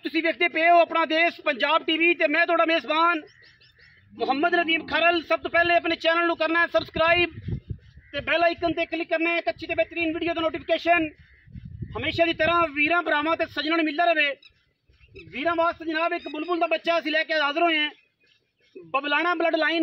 देखते पे हो अपना देश पंजाब टीवी ते मैं थोड़ा मेज़बान मुहम्मद नदीम खरल। सब तो पहले अपने चैनल को करना है सब्सक्राइब ते बेल आइकन ते क्लिक करना है। अच्छी ते बेहतरीन वीडियो का नोटिफिकेशन हमेशा की तरह वीरां भरावां ते सज्जनां नूं मिलदा रहे। वीरां वास्ते जनाब एक बुलबुल का बच्चा असीं लैके हाज़र होए हैं। बबलाना ब्लड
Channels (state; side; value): identical; both; correlation 1.00